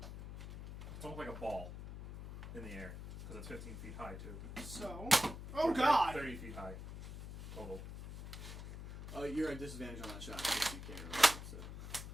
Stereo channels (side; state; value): left; noise; hum, 9 dB below the sound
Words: It's almost like a ball in the air because it's 15 feet high too. So, oh Or god! 30 feet high total. You're at disadvantage on that shot. Because you can't